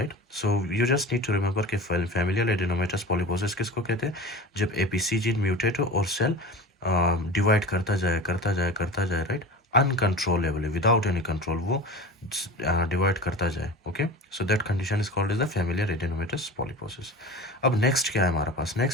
So you just need to remember कि फैमिलियल एडिनोमेटस पॉलिपोसिस किसको कहते हैं? जब एपीसी जीन म्यूटेट हो और सेल डिवाइड करता जाए, करता जाए, करता जाए, right, uncontrollably, without any control वो डिवाइड करता जाए. Okay, so that condition is called as the familial adenomatous polyposis. अब नेक्स्ट क्या है हमारे पास?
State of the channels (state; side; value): normal; both; correlation 0.33